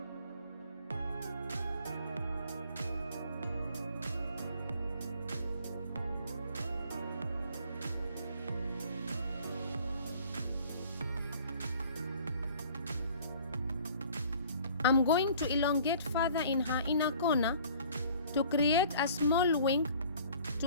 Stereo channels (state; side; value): inverted; both; correlation -0.52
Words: I'm going to elongate further in her inner corner to create a small wing